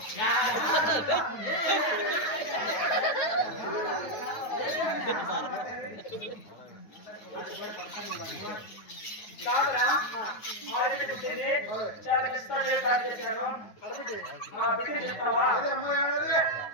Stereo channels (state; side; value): late; right; 9.4 ms